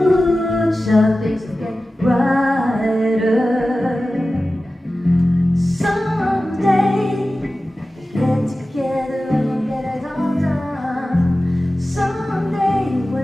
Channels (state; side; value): normal; both; correlation 0.95